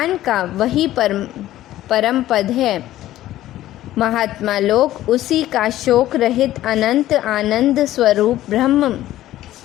का वही परम पद है। महात्मा लोग उसी का शोक रहित अनंत आनंद स्वरूप ब्रह्म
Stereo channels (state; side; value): quieter; right; 14.2 dB